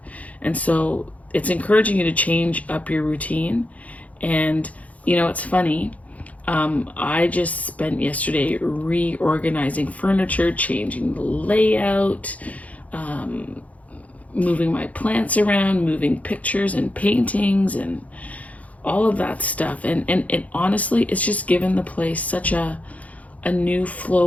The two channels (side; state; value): right; late; 0.069 ms